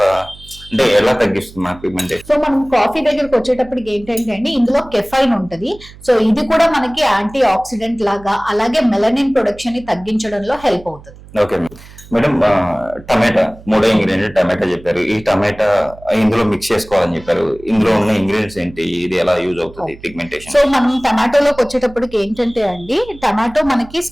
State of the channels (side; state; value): right; noise; hum, 20 dB below the sound